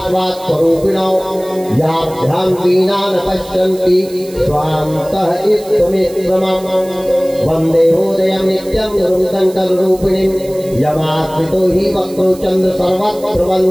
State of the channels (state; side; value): noise; right; hiss, 20 dB below the sound